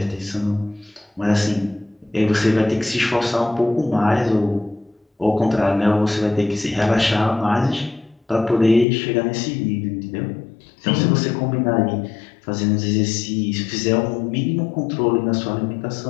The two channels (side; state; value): right; drops out; at 8.8 s